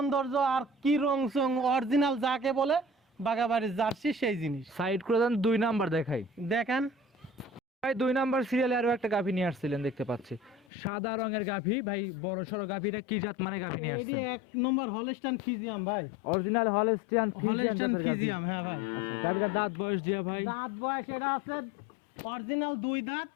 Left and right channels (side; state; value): right; drops out; at 10.7 s